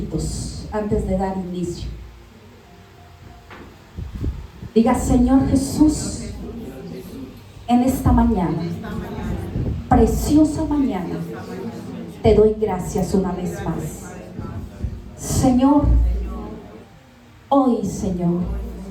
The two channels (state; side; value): identical; both; correlation 1.00